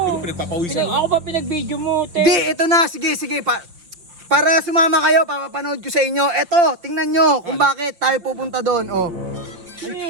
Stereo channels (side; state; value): left; late; 5.7 ms